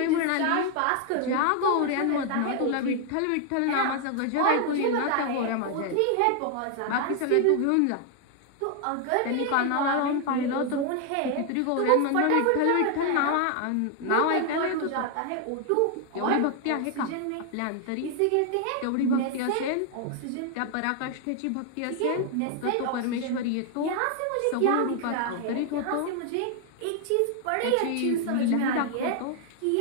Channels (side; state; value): both; different; correlation 0.00